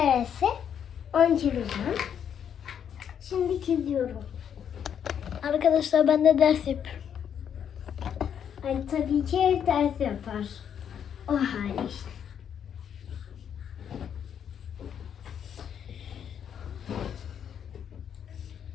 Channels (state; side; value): quieter; right; 8.5 dB